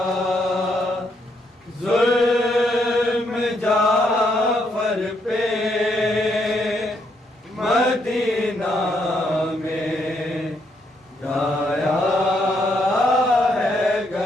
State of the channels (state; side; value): normal; both; correlation 0.75